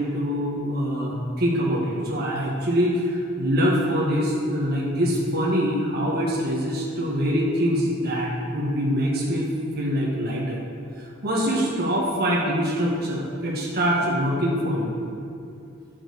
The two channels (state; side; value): normal; both; correlation 0.51